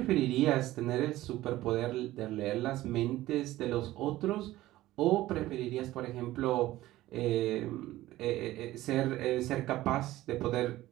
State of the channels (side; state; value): left; quieter; 16.1 dB